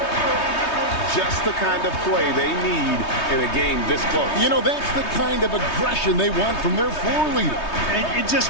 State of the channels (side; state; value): right; late; 3.2 ms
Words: Just the kind of play they need in a game this close. You know, that's the kind of aggression they want from their floor leader. And it